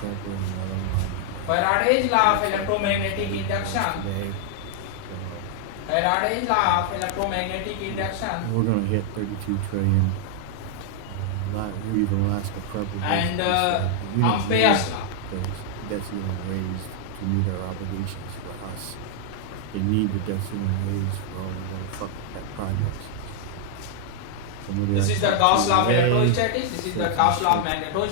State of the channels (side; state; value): both; different; correlation -0.01